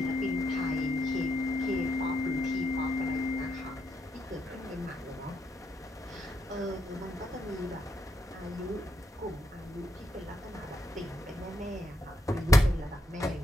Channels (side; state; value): both; normal; correlation 0.79